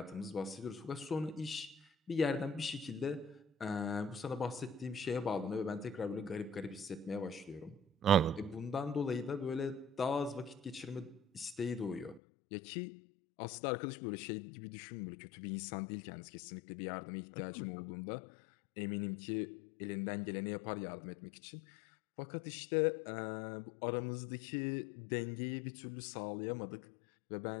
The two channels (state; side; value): drops out; right; at 12.2 s